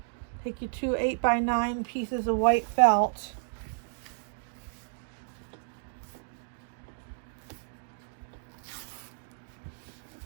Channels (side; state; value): left; silent; digital silence